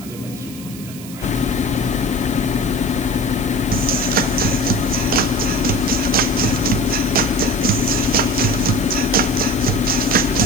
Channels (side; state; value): right; noise; hiss, 16 dB below the sound